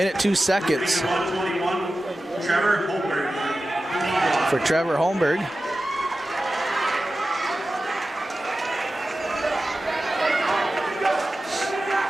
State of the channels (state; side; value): normal; both; correlation 0.94